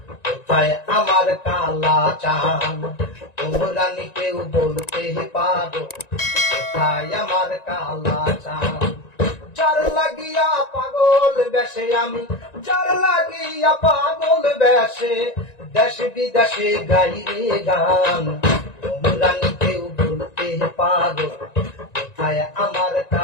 কোথায় আমার কালা চান? তোমরা নি কেউ বলতে পারো কোথায় আমার কালা চান? যার লাগিয়া পাগল বেশে আমি, যার লাগিয়া পাগল বেশে দেশ বিদেশে গাই রে গান। তোমরা নি কেউ বলতে পারো কোথায় আমার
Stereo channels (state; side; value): late; right; 1.9 ms